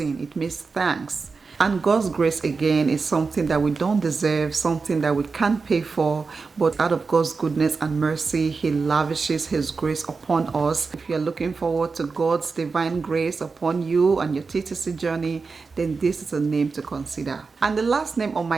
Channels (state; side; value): quieter; left; 4.6 dB